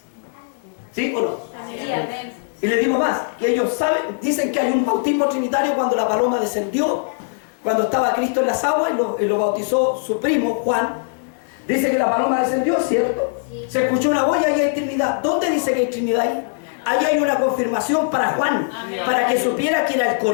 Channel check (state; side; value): silent; right; digital silence